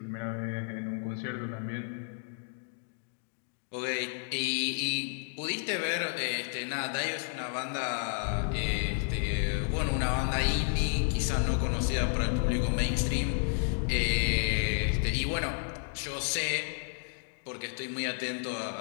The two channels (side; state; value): right; silent; 56 dB below the other